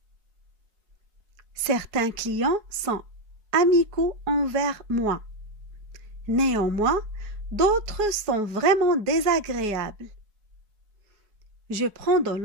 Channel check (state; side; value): late; left; 4.7 ms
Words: Certains clients sont amicaux envers moi. Néanmoins, d'autres sont vraiment désagréables. Je prends de